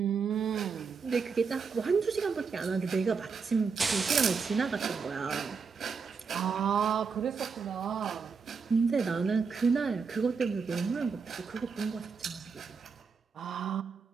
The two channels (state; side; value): quieter; left; 5.4 dB